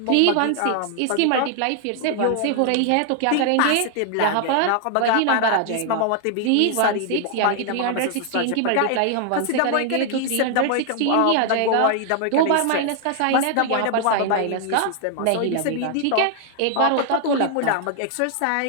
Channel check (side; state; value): both; different; correlation 0.00